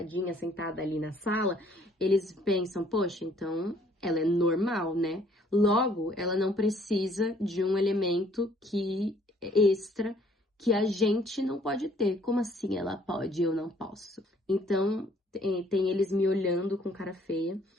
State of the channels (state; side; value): normal; both; correlation 0.61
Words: sentada ali na sala, eles pensam, poxa, então ela é normal, né? Logo, ela não precisa de um elemento que extra que a gente não pode ter. Como assim ela pode e eu não posso? Então, tem eles me olhando com cara feia.